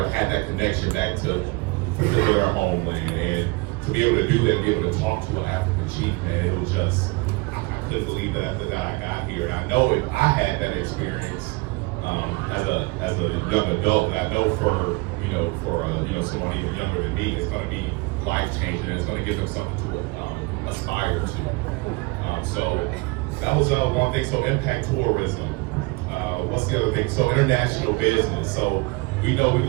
had that connection back to their homeland, and to be able to do that, and be able to talk to an African chief, man, it was just, I couldn't believe that after that I got here. And I know if I had that experience, as a young adult, and I know for someone even younger than me, it's going to be life changing, and it's going to give them something to aspire to. So that was one thing. So impact tourism. What's the other thing? So international business. So we know we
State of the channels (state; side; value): quieter; left; 26.0 dB